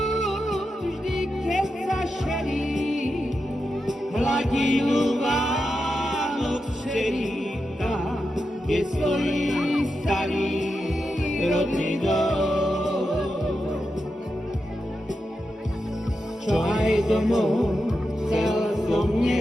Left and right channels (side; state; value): both; normal; correlation 0.88